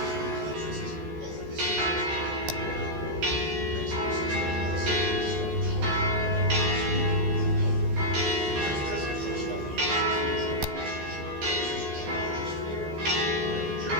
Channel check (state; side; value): late; left; 14 ms